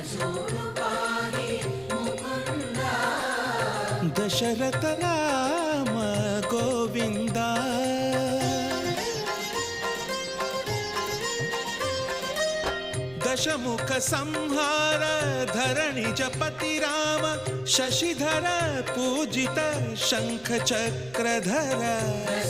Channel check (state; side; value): noise; right; rumble, 23 dB below the sound